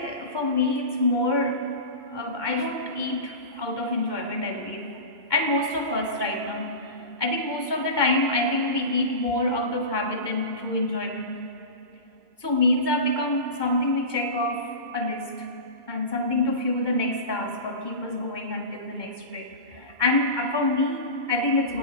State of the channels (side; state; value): left; late; 2.2 ms